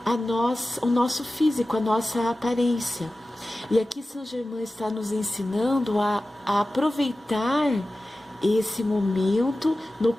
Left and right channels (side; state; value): both; normal; correlation 0.95